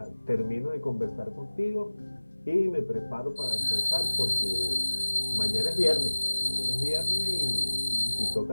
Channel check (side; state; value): both; inverted; correlation -1.00